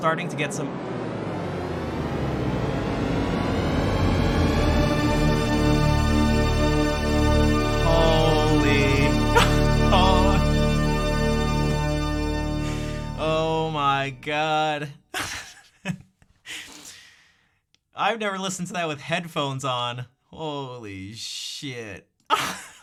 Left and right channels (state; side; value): identical; both; correlation 1.00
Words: to get some. Holy. Oh. Oh my God. I've never listened to that with headphones on. Holy shit.